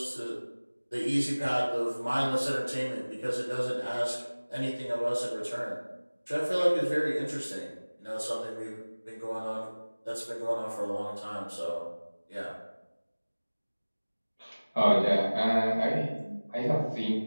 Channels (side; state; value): both; inverted; correlation -1.00